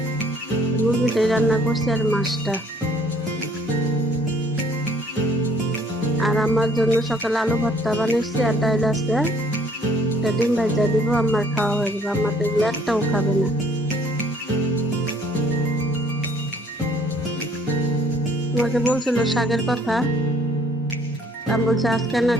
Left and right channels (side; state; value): both; normal; correlation 0.60